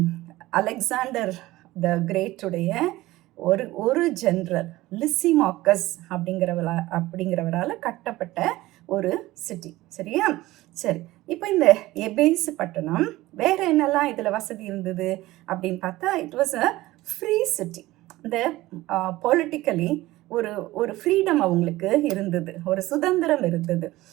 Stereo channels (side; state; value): left; quieter; 17.8 dB